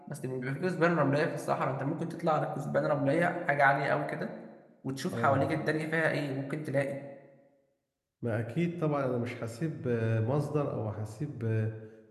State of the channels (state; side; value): identical; both; correlation 1.00